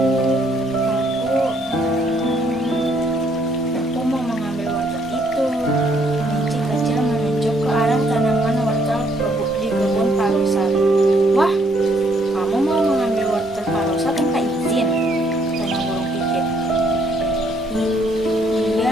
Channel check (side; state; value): both; normal; correlation 0.68